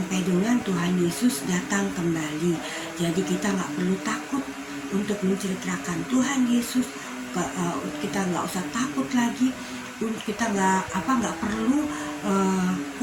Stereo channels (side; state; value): both; identical; correlation 1.00